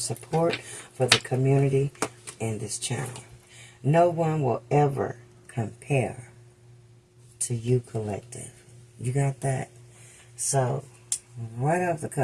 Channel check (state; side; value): identical; both; correlation 1.00